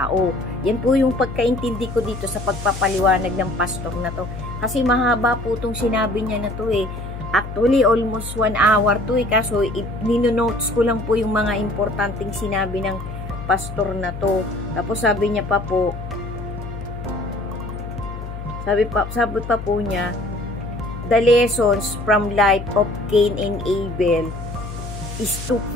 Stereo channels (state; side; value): noise; left; hum, 9 dB below the sound